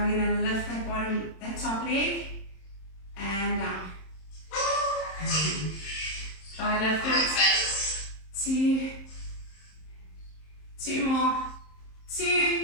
we're going to lift that top leg and down. Try lift it. 2 more.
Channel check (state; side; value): late; right; 27 ms